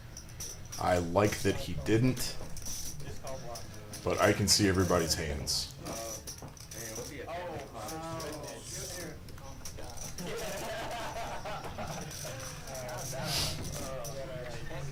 I like that he didn't. but I can see everybody's hands.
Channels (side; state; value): both; identical; correlation 1.00